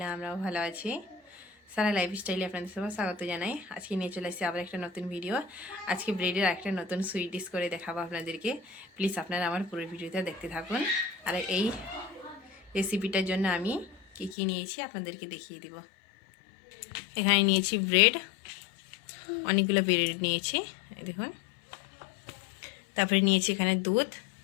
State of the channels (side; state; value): right; drops out; at 14.4 s